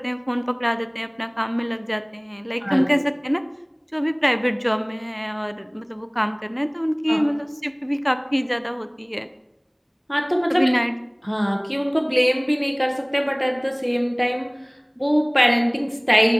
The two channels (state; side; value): identical; both; correlation 1.00